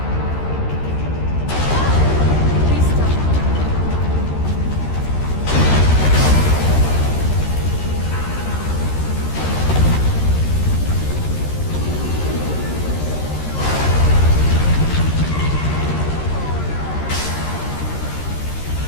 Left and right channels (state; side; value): late; right; 13 ms